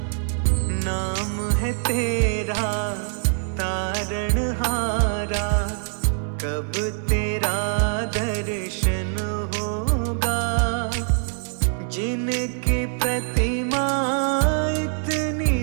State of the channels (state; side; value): silent; left; 58 dB below the other